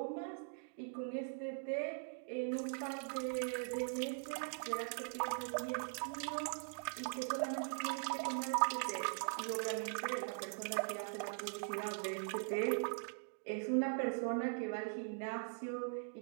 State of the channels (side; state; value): left; silent; digital silence